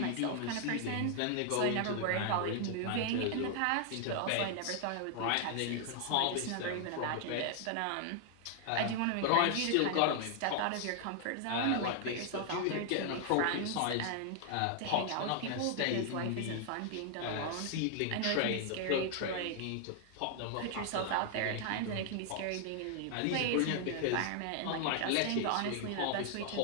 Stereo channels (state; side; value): different; both; correlation 0.00